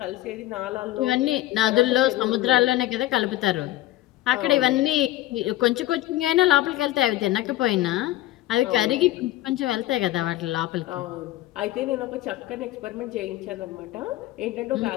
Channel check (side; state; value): right; quieter; 15.6 dB